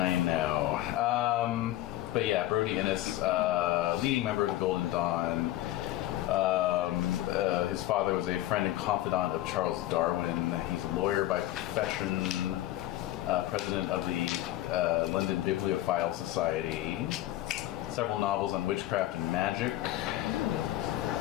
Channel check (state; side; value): quieter; right; 14.8 dB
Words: know. But yeah, Brody Innes, leading member of the Golden Dawn. His father was a friend and confidant of Charles Darwin. He's a lawyer by profession, president of the London Bibliophile Society. Several novels on witchcraft and magic.